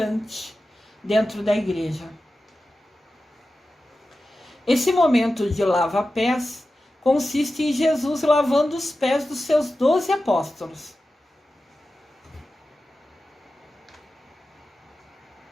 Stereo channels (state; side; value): normal; both; correlation 0.93